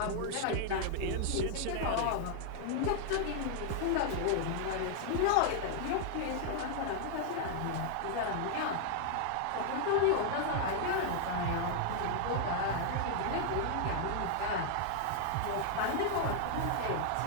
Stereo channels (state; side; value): different; both; correlation 0.00